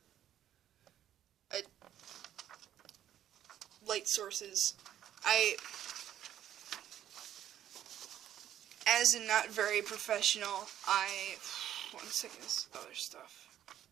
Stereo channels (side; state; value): left; quieter; 11.3 dB